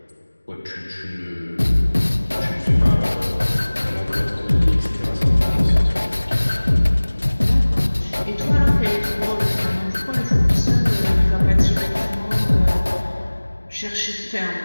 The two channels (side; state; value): both; inverted; correlation -1.00